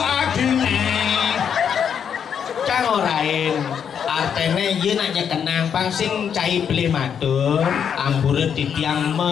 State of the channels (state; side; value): quieter; right; 7.8 dB